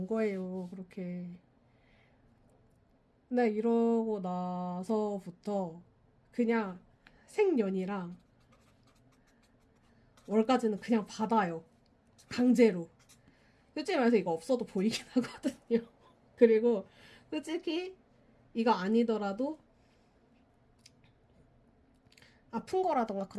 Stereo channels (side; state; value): both; identical; correlation 1.00